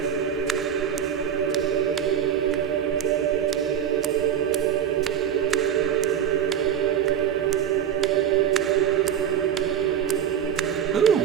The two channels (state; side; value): quieter; left; 9.1 dB